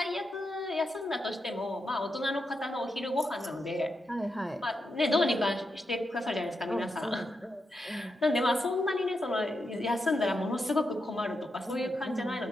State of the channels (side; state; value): both; normal; correlation 0.85